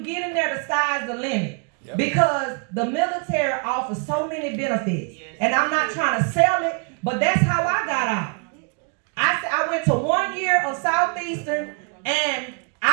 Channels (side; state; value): left; quieter; 38.9 dB